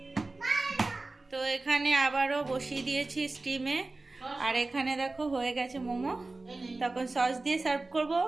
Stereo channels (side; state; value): left; quieter; 3.3 dB